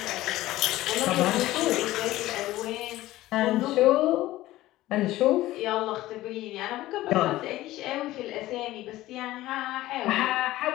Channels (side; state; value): right; quieter; 16.3 dB